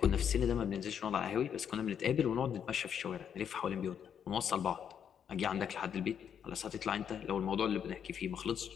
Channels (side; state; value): right; quieter; 8.2 dB